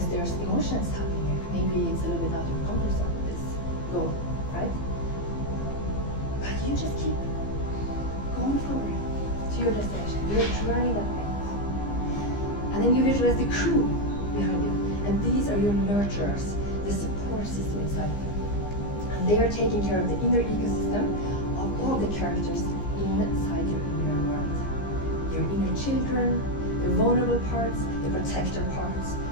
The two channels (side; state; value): right; late; 15 ms